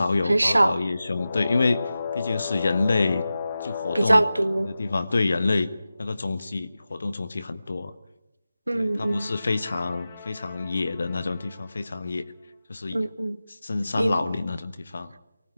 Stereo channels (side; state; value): both; inverted; correlation -0.94